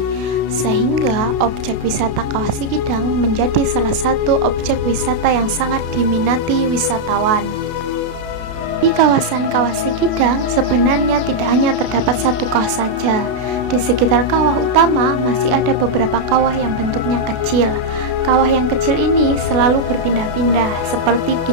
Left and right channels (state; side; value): late; left; 32 ms